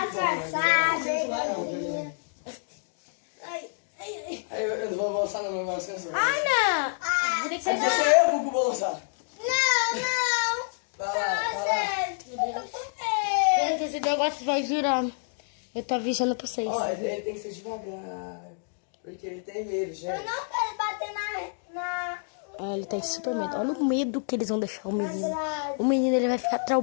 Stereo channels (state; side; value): silent; right; digital silence